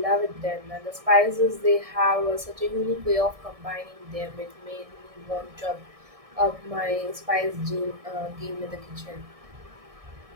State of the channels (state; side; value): late; left; 1.6 ms